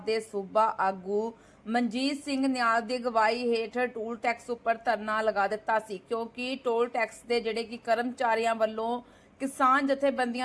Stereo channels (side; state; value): both; identical; correlation 1.00